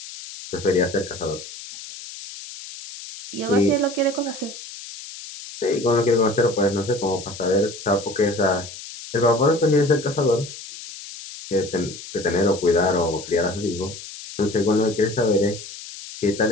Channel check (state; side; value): noise; left; hiss, 13 dB below the sound